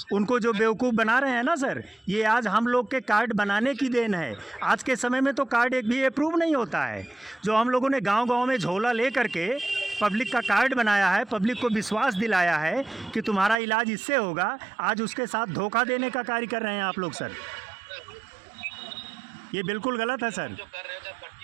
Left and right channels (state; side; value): drops out; left; at 13.6 s